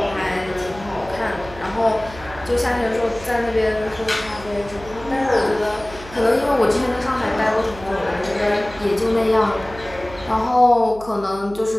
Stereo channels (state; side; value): noise; right; hum, 17 dB below the sound